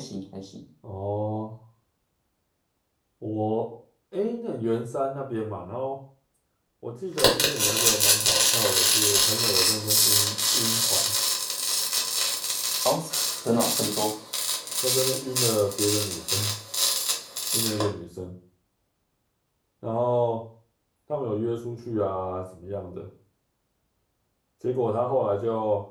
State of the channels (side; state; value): both; identical; correlation 1.00